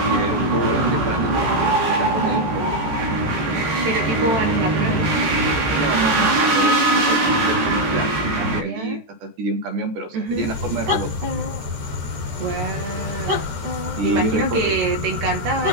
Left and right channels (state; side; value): late; left; 14 ms